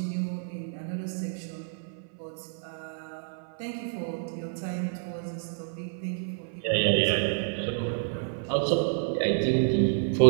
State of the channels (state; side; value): silent; left; 56 dB below the other